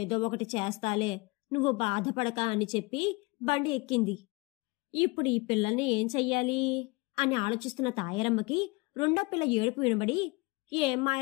ఒకటి చేస్తాలే, నువ్వు బాధపడక అని చెప్పి బండి ఎక్కింది. ఇప్పుడు ఈ పిల్లల్ని ఏం చెయ్యాలి అని ఆలోచిస్తున్న తాయారమ్మకి రెండో పిల్ల ఏడుపు వినబడి, ఏం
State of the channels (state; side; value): quieter; right; 26.3 dB